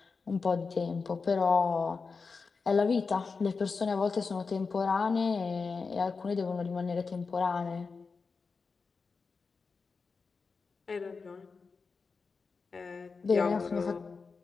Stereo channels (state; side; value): quieter; right; 4.7 dB